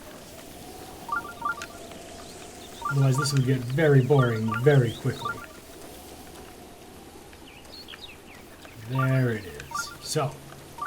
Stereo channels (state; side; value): identical; both; correlation 1.00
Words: Otherwise, this would get very boring very quickly. There it is. So,